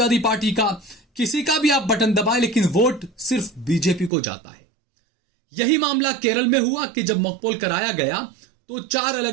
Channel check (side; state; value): left; drops out; at 4.1 s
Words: पार्टी का, किसी का भी आप बटन दबाएं, लेकिन वोट सिर्फ बीजेपी को जाता है। यही मामला केरल में हुआ कि जब मॉकपोल कराया गया तो 4